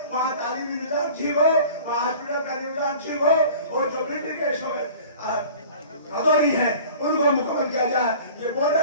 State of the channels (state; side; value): inverted; both; correlation -0.44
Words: वहाँ तालीमी निजाम ठीक हो, वहाँ हॉस्पिटल का निजाम ठीक हो, और जो मिलिट्री के भदौरी है उनको मुकम्मल किया जाए। ये